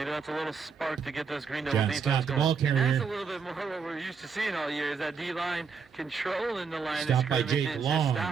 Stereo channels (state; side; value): quieter; left; 5.8 dB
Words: that's a little spark to get this Green Devil defense going. And that's a little bit more what we're used to seeing all year, is that D-line controlling the line of scrimmage and just